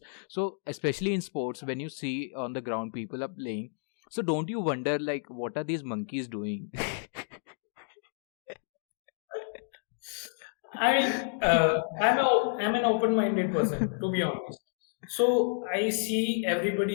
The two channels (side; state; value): right; silent; 58 dB below the other